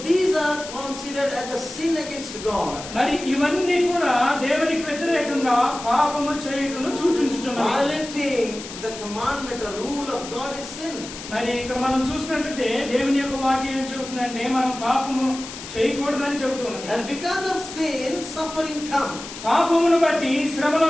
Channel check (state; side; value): noise; left; hiss, 12 dB below the sound